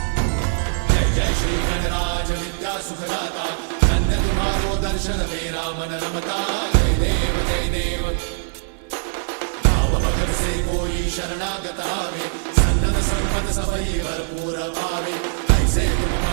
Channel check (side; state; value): left; silent; digital silence